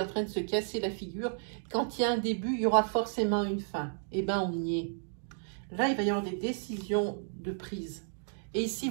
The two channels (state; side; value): silent; left; digital silence